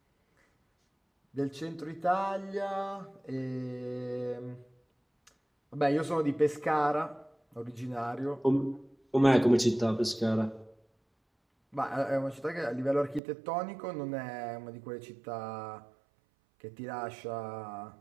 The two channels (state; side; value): drops out; left; at 13.2 s